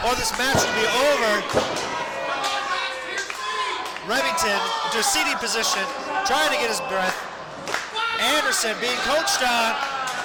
or this match will be over. Remington into a seating position, trying to get his breath. Anderson being coached on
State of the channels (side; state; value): both; identical; correlation 1.00